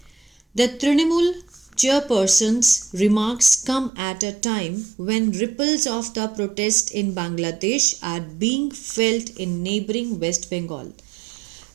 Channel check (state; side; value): drops out; left; at 3.9 s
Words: The Trinamool chairperson's remarks come at a time when ripples of the protest in Bangladesh are being felt in neighboring West Bengal.